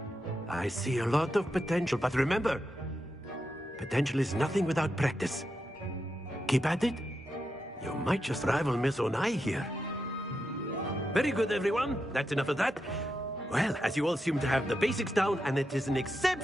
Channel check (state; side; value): normal; both; correlation 0.86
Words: I see a lot of potential, but remember, potential is nothing without practice. Keep at it. You might just rival Miss Onai here. Very good, everyone. That's enough of that. Well, as you all seem to have the basics down, and it is an